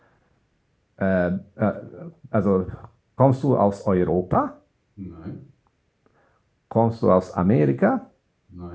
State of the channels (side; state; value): both; identical; correlation 1.00